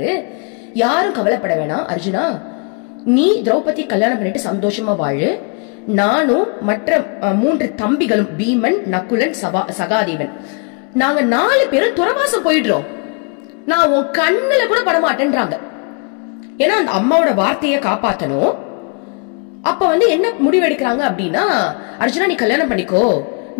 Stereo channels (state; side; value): quieter; right; 35.9 dB